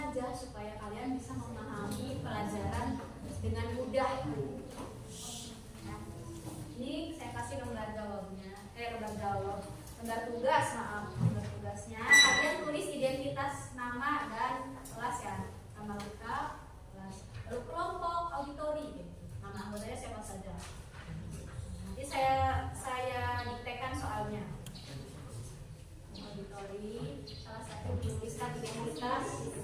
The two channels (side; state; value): both; identical; correlation 1.00